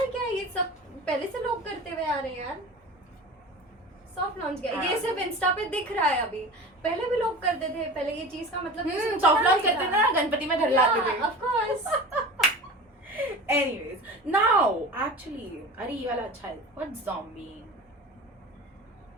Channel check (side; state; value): both; normal; correlation 0.35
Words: क्या है? ये सब पहले से लोग करते हुए आ रहे हैं यार. सॉफ्ट लॉन्च क्या है? ये हाँ. सिर्फ इंस्टा पे दिख रहा है अभी. पहले भी लोग करते थे. पहले ये चीज का मतलब सॉफ्ट लॉन्च करते थे ना, गणपति में घर लाते थे. Of course. Anyways, now actually अरे ये वाला अच्छा है. What's zombie?